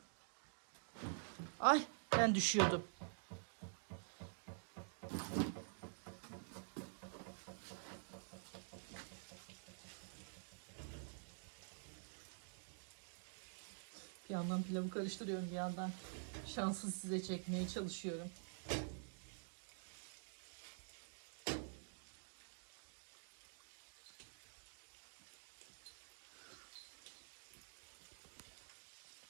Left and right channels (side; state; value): left; silent; digital silence